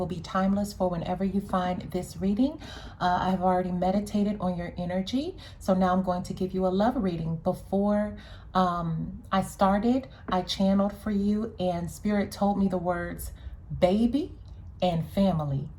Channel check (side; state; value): both; identical; correlation 1.00